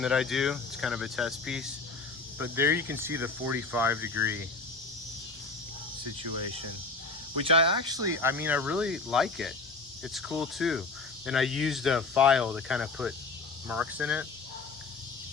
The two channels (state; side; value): quieter; right; 4.0 dB